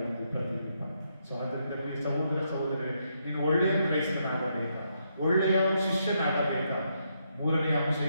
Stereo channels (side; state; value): both; inverted; correlation -0.78